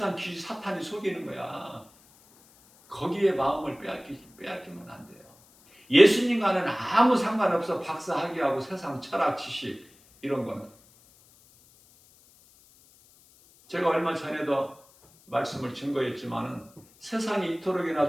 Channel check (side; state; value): left; noise; hiss, 28 dB below the sound